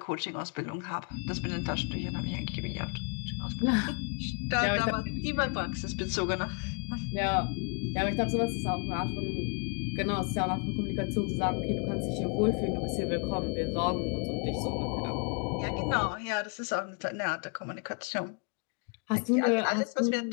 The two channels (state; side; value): quieter; right; 36.9 dB